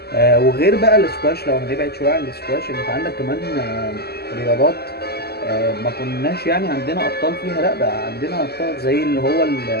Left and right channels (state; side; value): late; right; 0.46 ms